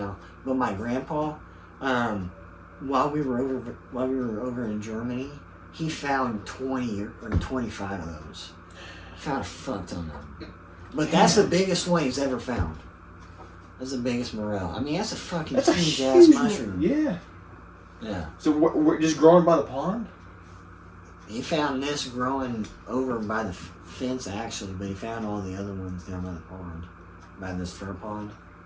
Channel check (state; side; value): identical; both; correlation 1.00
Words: but my grandpa, while we were over in Germany, he found 20 or 25 of those. Found a fuck ton of them. But that's the biggest one he's ever found. That's the biggest morel. I mean, that's a fucking huge ass mushroom. Yeah. Yeah. So we're just growing by the pond? He found this growing over by the fence actually, but he found all the other ones down by the pond, by this fir pond.